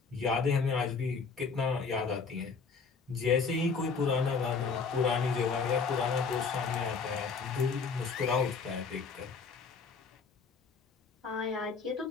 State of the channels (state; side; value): quieter; right; 5.1 dB